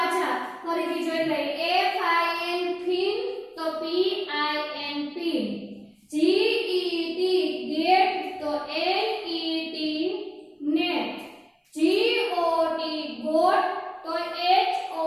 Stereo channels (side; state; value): both; identical; correlation 1.00